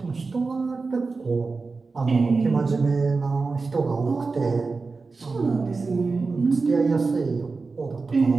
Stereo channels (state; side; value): quieter; left; 4.2 dB